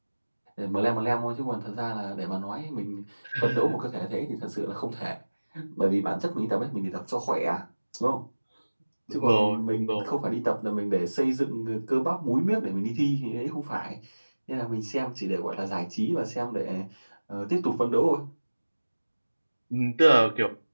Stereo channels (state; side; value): inverted; both; correlation -1.00